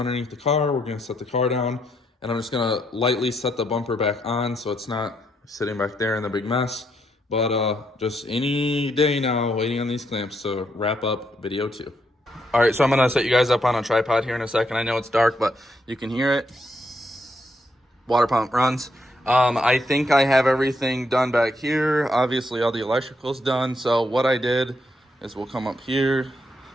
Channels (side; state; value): both; normal; correlation 0.77